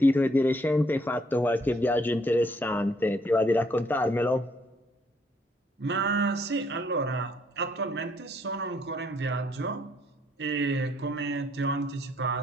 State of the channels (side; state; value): both; normal; correlation 0.68